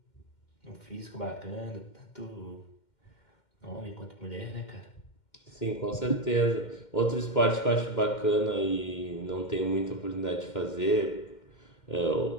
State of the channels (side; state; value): right; late; 2.1 ms